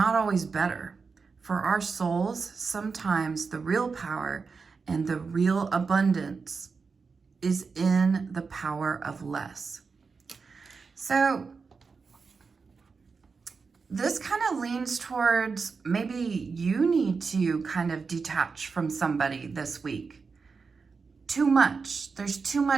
always better. For our souls, sometimes the real power and the real abundance is in the power of less. So this kind of leans towards maybe you need to kind of detach from somebody this week. Too much. There's too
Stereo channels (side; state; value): left; quieter; 4.9 dB